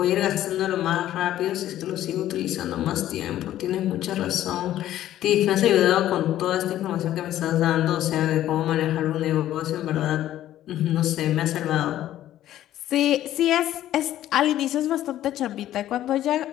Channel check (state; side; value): quieter; right; 12.9 dB